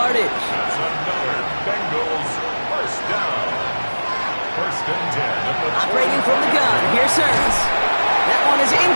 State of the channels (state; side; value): inverted; both; correlation -1.00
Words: That's another Bengals 1st down. 1st and 10. Operating from the gun. Here's Hurts. That one is